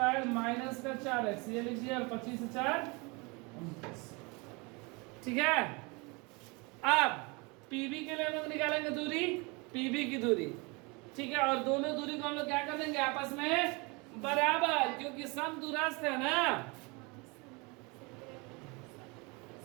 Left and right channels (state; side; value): quieter; left; 28.3 dB